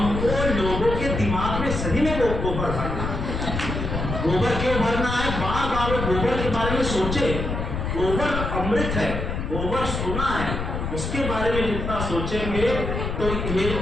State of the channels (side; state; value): left; noise; rumble, 3 dB below the sound